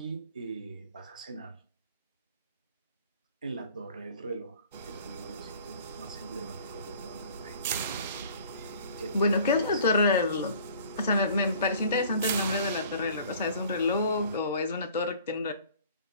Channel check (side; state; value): both; inverted; correlation -0.51